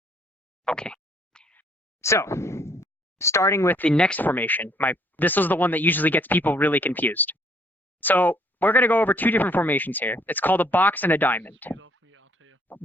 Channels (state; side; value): normal; both; correlation 0.64